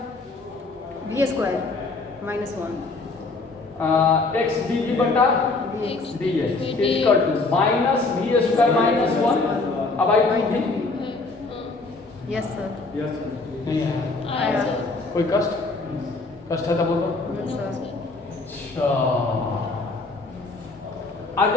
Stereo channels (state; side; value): quieter; right; 3.6 dB